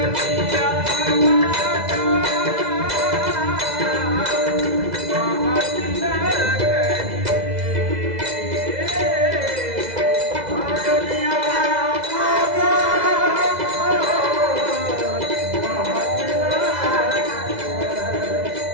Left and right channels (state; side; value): late; left; 2.0 ms